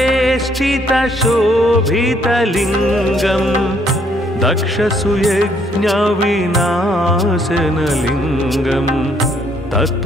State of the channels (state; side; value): normal; both; correlation 0.68